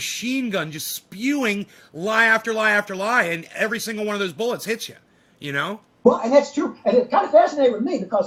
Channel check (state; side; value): identical; both; correlation 1.00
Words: gun just spewing lie after lie after lie, and every single one of those bullets hits you, Well, and that's true. And it kind of fascinated with me